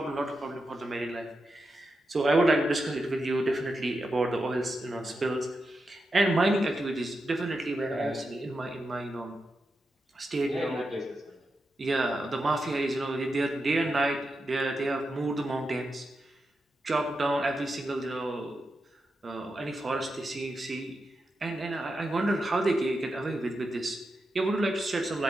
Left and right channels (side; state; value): both; normal; correlation 0.88